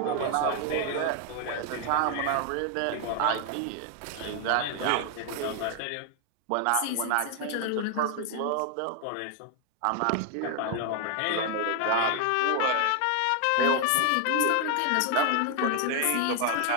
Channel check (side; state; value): both; different; correlation 0.00